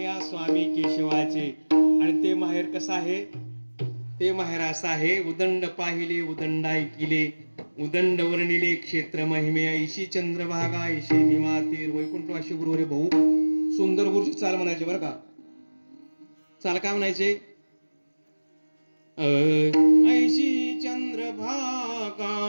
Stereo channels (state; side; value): inverted; both; correlation -1.00